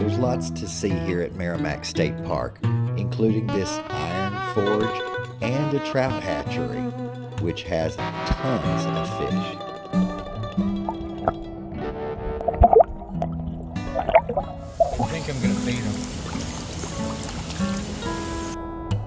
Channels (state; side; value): identical; both; correlation 1.00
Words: lots to see here at Meramec State Park, including this iron forge and a trout hatchery, which has tons of fish. I think I'm going to feed them.